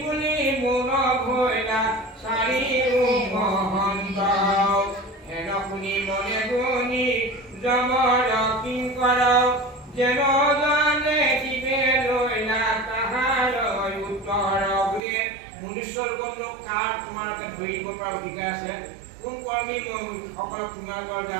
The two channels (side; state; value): left; drops out; at 15.0 s